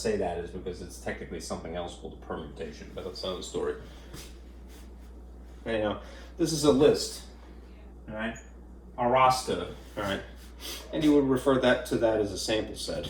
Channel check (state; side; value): identical; both; correlation 1.00